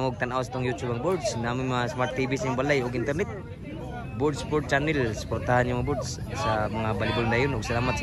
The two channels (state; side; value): identical; both; correlation 1.00